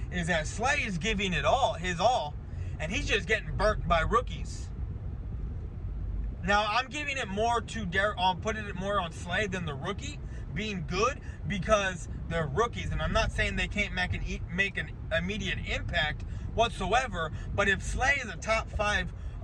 is that Slay is giving it all, his all, and he's just getting burnt by rookies. Now, I'm giving it more to I'm putting it more on Slay than the rookie being good, because they're rookies, and I'm not saying they can't make an immediate impact whatsoever. But if Slay is a top 5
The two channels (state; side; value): identical; both; correlation 1.00